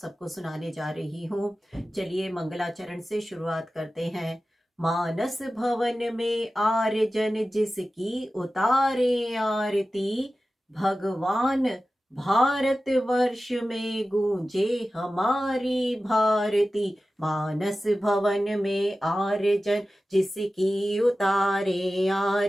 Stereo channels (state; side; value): normal; both; correlation 0.95